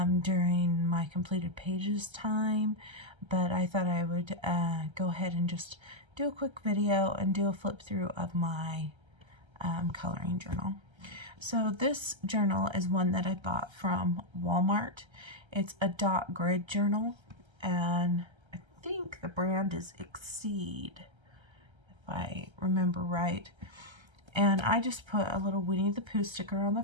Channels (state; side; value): late; left; 1.3 ms